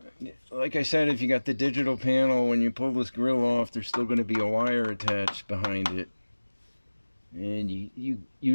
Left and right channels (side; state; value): both; inverted; correlation -1.00